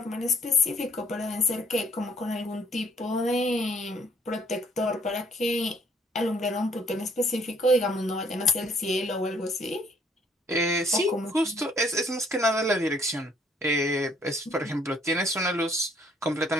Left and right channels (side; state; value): both; normal; correlation 0.62